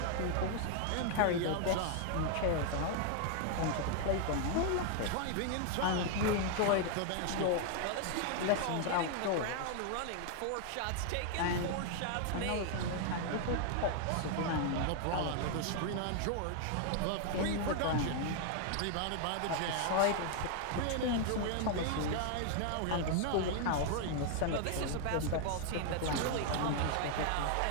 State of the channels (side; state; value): both; different; correlation 0.00